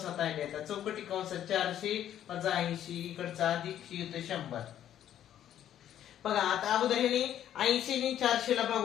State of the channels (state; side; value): quieter; right; 10.9 dB